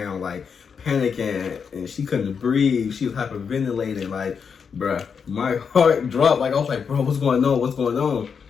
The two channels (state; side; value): quieter; right; 6.3 dB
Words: like panicking, and she couldn't breathe. She was hyperventilating, like, bruh, my heart dropped. Like, I was like, bro, what's going on? What's going on?